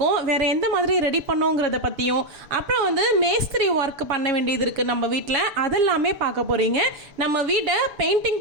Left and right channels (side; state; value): left; late; 6.8 ms